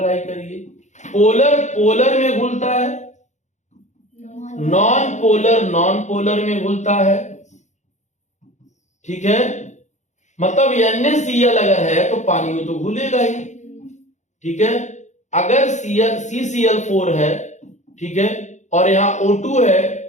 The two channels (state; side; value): late; right; 0.34 ms